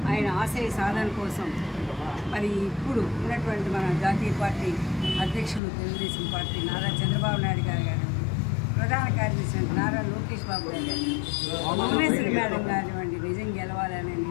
ఆయన ఆశయ సాధన కోసం మరి ఇప్పుడు ఉన్నటువంటి మన జాతీయ పార్టీ అధ్యక్షులు తెలుగుదేశం పార్టీ నారా చంద్రబాబు నాయుడు గారు ప్రధాన కార్యదర్శి నారా లోకేష్ బాబు గారు, భువనేశ్వరి మేడం కానివ్వండి, నిజం గెలవాలనే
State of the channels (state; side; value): drops out; right; at 5.6 s